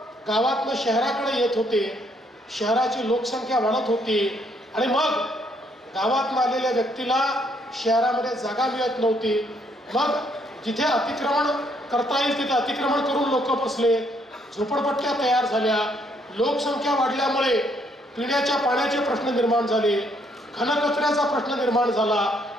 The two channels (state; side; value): normal; both; correlation 0.70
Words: गावातनं शहराकडे येत होते, शहराची लोकसंख्या वाढत होती आणि मग गावातून आलेल्या व्यक्तीला शहरामध्ये जागा मिळत नव्हती। मग जिथे अतिक्रमण करता येईल तिथे अतिक्रमण करून लोक बसले, झोपडपट्ट्या तयार झाल्या, लोकसंख्या वाढल्यामुळे पिण्याच्या पाण्याचे प्रश्न निर्माण झाले, घनकचऱ्याचा प्रश्न निर्माण झाला,